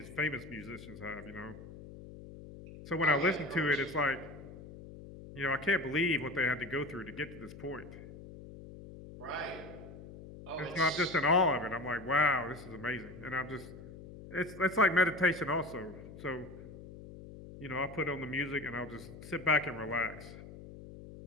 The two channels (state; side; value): noise; left; hum, 15 dB below the sound